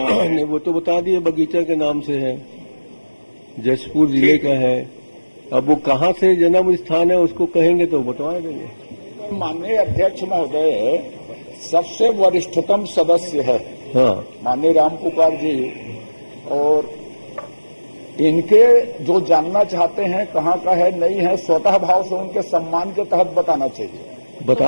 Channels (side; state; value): both; inverted; correlation -1.00